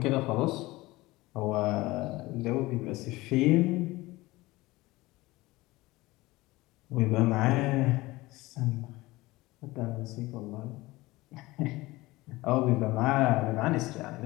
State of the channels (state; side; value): quieter; right; 20.0 dB